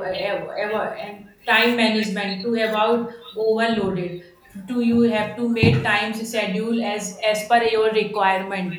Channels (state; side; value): identical; both; correlation 1.00